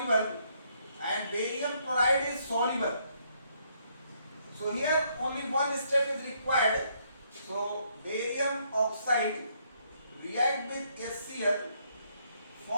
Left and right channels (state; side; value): inverted; both; correlation -0.71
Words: and barium chloride is soluble. So here only one step is required. So barium oxide react with HCl,